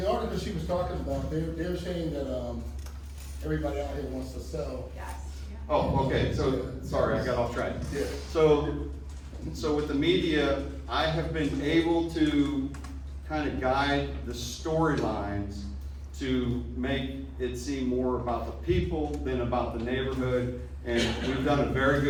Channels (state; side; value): identical; both; correlation 1.00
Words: article she was talking about, they're saying that, everybody out here wants to sell. Yes. Oh, okay, so, sorry, I got off track. Yeah. So with the media, I have been able to kind of guide the storylines to make it seem more about the people than about the neighborhood. And we've done a very